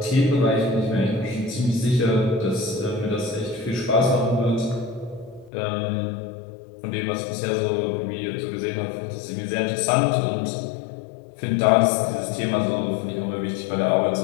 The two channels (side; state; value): right; drops out; at 5.5 s